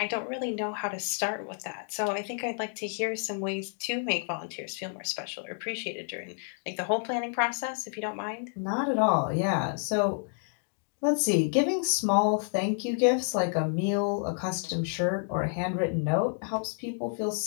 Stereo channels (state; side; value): silent; right; 58 dB below the other